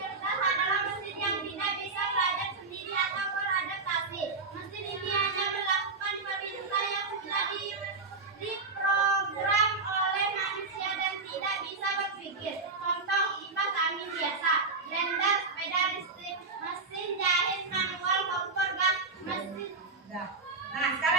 cerdas adalah mesin yang tidak bisa belajar sendiri atau beradaptasi. Mesin ini hanya melakukan perintah yang sudah diprogram oleh manusia dan tidak bisa berpikir. Contoh kipas angin biasa, blender, sepeda listrik, mesin jahit manual, kompor gas, mesin. Nah,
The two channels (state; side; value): quieter; left; 4.0 dB